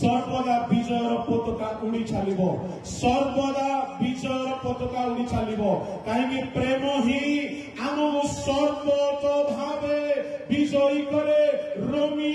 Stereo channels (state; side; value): identical; both; correlation 1.00